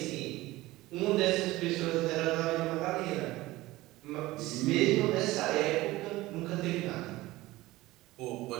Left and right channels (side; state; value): left; quieter; 18.5 dB